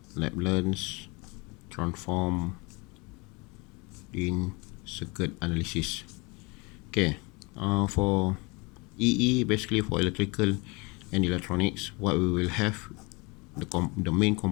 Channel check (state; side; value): quieter; right; 27.9 dB